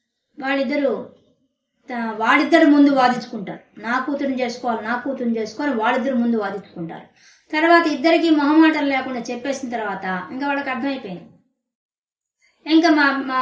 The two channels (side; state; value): both; identical; correlation 1.00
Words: వాళ్ళిద్దరు ముందు వాదించుకుంటారు, నా కూతురుని చేసుకోవాలి వాళ్ళిద్దరు ముందు వాదించుకుంటారు. తర్వాత ఇద్దరికి మొహమాటం లేకుండా చెప్పేసిన తర్వాత ఇంకా వాళ్ళకి అర్థమైపోయింది, ఇంకా మా